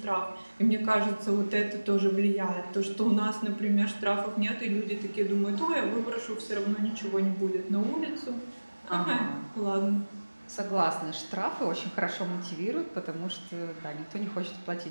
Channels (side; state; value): both; inverted; correlation -1.00